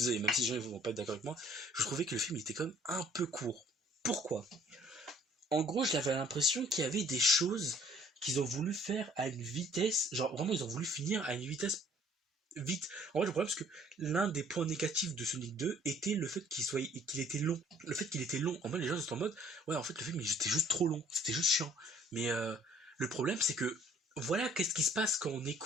même si les gens ne vont pas être d'accord avec moi, je trouvais que le film était quand même un peu court. Pourquoi? En gros, j'avais l'impression qu'il y avait des choses qu'ils ont voulu faire à une vitesse, genre vraiment ils ont voulu finir à une vitesse vite. En fait, le problème c'est que l'un des points négatifs de Sonic 2 était le fait qu'il était long. Le fait qu'il était long. En fait, les gens étaient en mode, ouais, en fait, le film il était juste trop long, c'était juste chiant. Mais le problème c'est que voilà, qu'est-ce qui se passe quand on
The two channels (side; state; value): both; normal; correlation 0.57